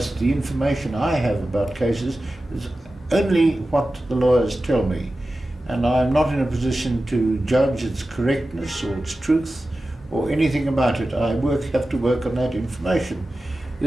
the information I have about cases is only what the lawyers tell me, and I'm not in a position to judge its correctness or its truth or anything about it. I have to work on that information.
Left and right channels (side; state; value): both; normal; correlation 0.94